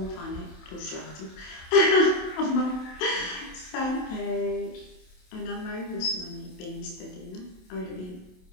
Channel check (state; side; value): late; right; 27 ms